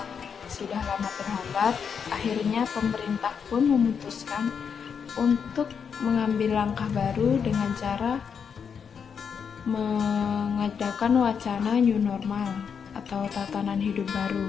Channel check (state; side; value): quieter; right; 6.7 dB